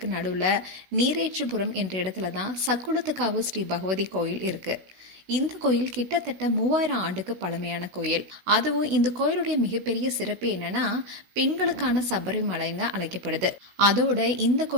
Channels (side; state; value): left; late; 16 ms